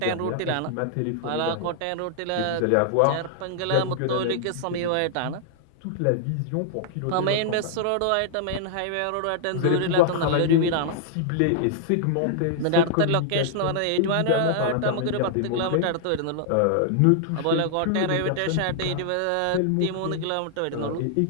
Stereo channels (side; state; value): both; different; correlation -0.01